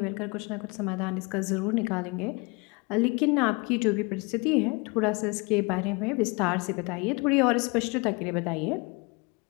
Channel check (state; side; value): quieter; right; 28.9 dB